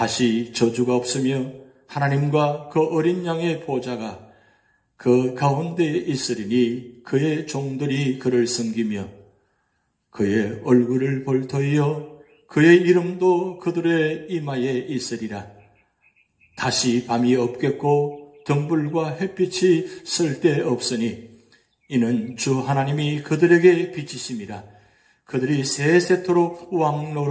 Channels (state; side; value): identical; both; correlation 1.00